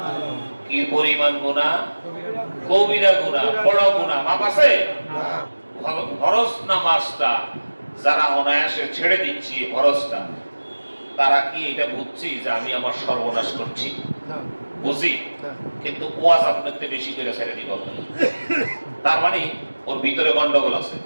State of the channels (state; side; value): inverted; both; correlation -1.00